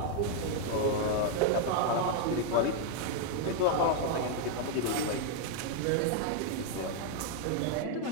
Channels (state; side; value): different; both; correlation 0.00